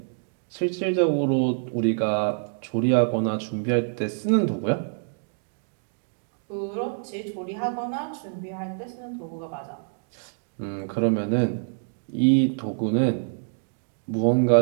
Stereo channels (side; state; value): left; silent; digital silence